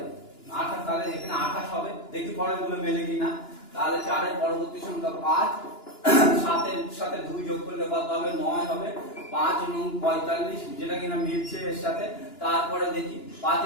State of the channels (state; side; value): late; right; 2.9 ms